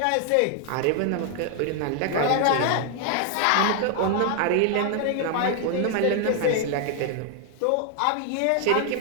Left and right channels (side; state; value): both; different; correlation 0.00